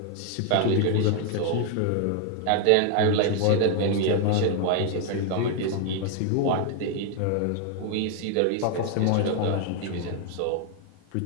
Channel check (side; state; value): both; different; correlation 0.00